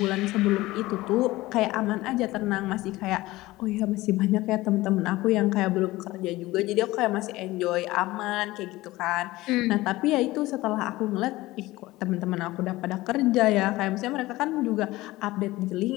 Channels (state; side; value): quieter; right; 18.5 dB